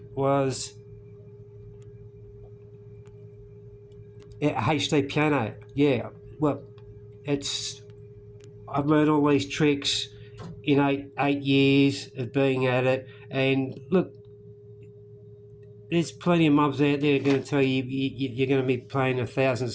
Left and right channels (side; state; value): both; identical; correlation 1.00